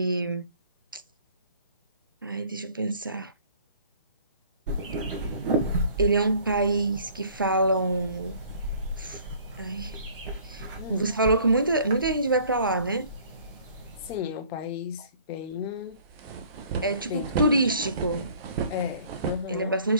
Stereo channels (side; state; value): both; inverted; correlation -0.54